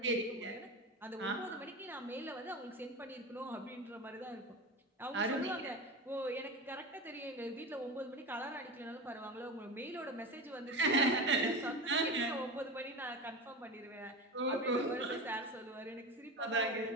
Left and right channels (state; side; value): normal; both; correlation 0.25